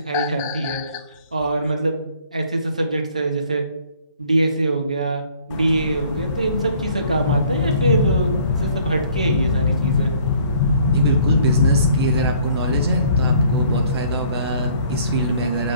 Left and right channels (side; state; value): both; inverted; correlation -0.58